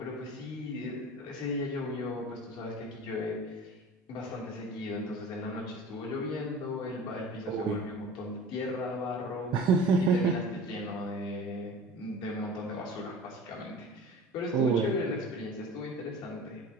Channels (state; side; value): normal; both; correlation 0.39